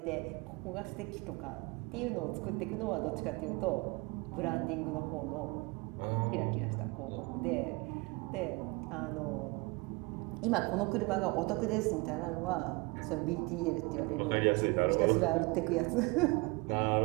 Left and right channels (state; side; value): quieter; left; 26.8 dB